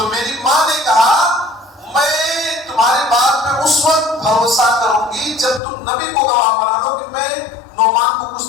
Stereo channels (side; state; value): right; drops out; at 5.6 s